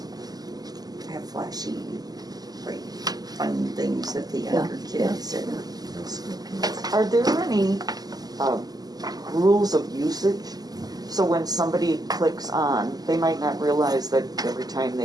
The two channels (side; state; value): left; late; 0.19 ms